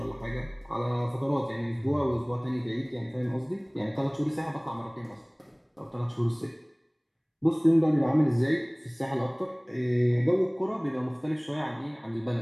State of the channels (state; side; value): identical; both; correlation 1.00